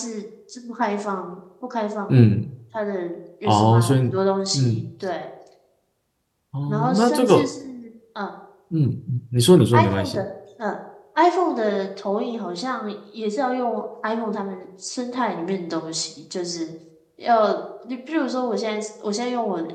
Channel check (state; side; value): identical; both; correlation 1.00